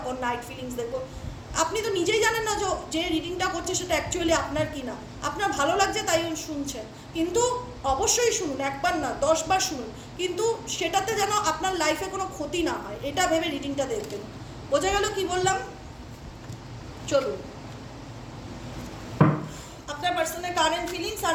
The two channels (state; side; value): identical; both; correlation 1.00